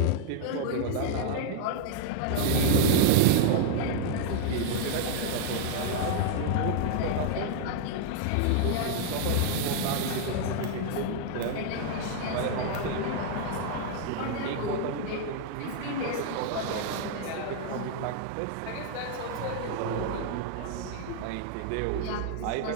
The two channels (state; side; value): different; both; correlation 0.00